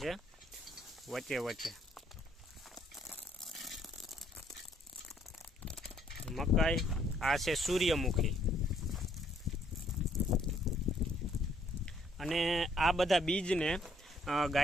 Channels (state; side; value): normal; both; correlation 0.67